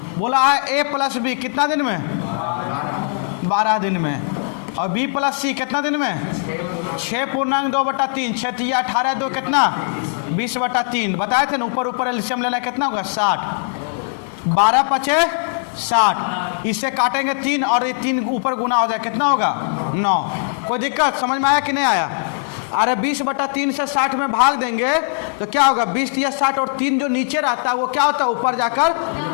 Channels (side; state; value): right; silent; digital silence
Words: बोला है ए प्लस बी कितना दिन में? 12 दिन में। और बी प्लस सी कितना दिन में? 6.2/3। 6 × 18 2 कितना? 20/3। बताए थे ना, ऊपर ऊपर एलसीएम लेना कितना होगा? 60। 12 × 5 = 60। इससे काटेंगे 3 और ये 3 ऊपर गुना हो जाए, कितना होगा? 9। कोई दिक्कत? समझ में आया कि नहीं आया? अरे 20/3 से 60 में भाग देंगे तो क्या होगा? 20 या 60 और 3 जो नीचे रहता है वो क्या होता है? ऊपर जाकर